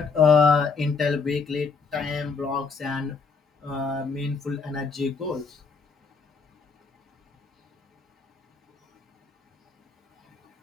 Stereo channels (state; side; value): quieter; right; 4.8 dB